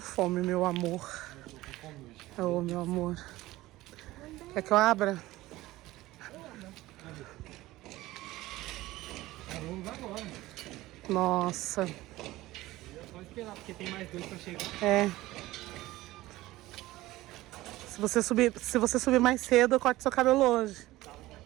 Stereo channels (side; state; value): left; quieter; 17.6 dB